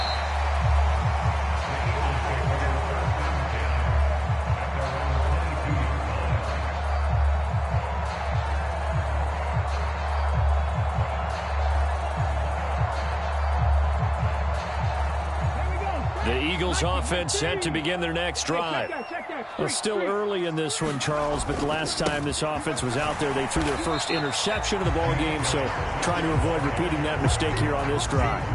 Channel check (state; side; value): identical; both; correlation 1.00